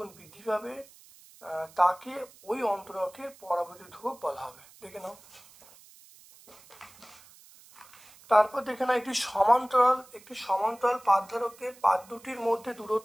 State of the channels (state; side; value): noise; right; hiss, 24 dB below the sound